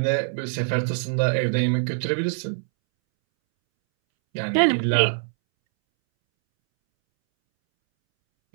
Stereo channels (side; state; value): left; silent; 63 dB below the other